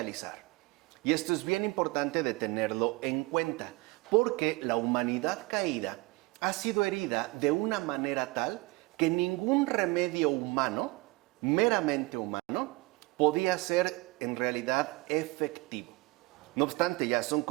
Y esto es bien importante de tenerlo en cuenta, porque la humanidad caída ha sido herida de una manera tal que ningún remedio humano, meramente humano, podía ser en realidad efectivo. No obstante, ya son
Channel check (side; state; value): left; quieter; 23.7 dB